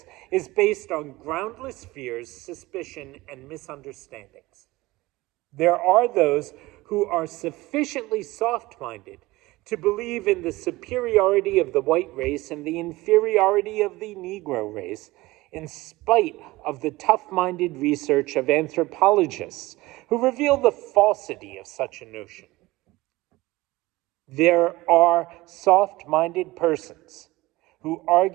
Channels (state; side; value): quieter; left; 19.8 dB